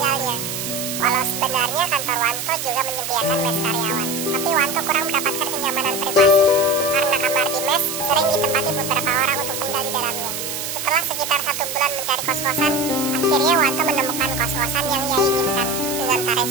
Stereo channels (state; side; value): noise; right; hiss, 5 dB below the sound